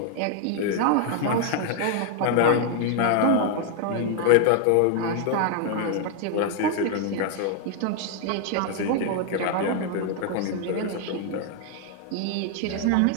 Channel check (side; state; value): both; different; correlation 0.00